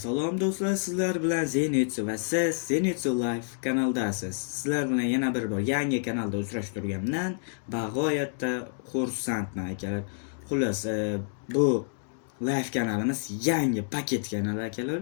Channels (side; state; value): right; silent; 59 dB below the other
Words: do'stlar, sizlar bilan Zenitsu va siz Zenitsu Live kanaldasiz. Sizlar bilan yana bir bor yangi kanalda uchrashib turganimdan bag'oyatda xursandman akalar. Xullas, bu live kanalimiz yangi paket kanal akalar.